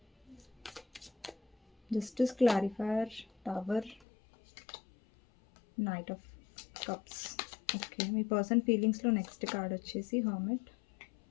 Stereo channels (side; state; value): right; drops out; at 4.0 s